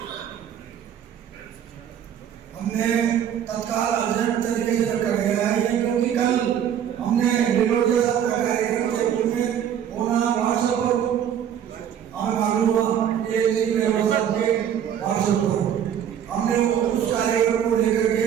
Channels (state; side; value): quieter; left; 9.3 dB